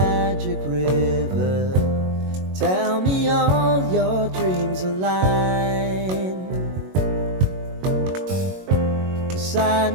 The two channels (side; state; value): left; late; 22 ms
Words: river. Tell me all your dreams align.